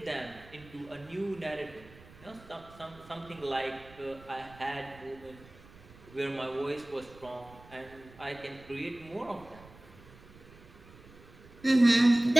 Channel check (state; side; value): noise; right; rumble, 21 dB below the sound